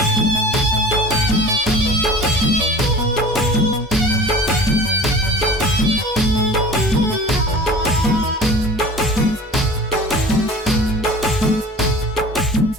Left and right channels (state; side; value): normal; both; correlation 0.41